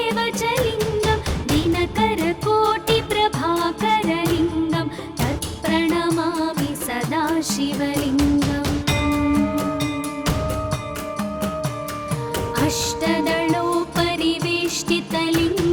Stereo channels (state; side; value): identical; both; correlation 1.00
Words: च लिङ्गं दिनकरकोटिप्रभाकरलिङ्गं तत्प्रणमामि सदाशिवलिङ्गम्